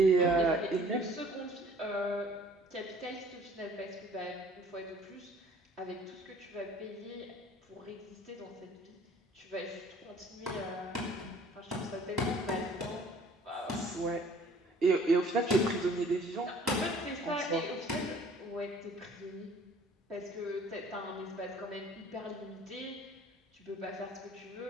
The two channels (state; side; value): normal; both; correlation 0.53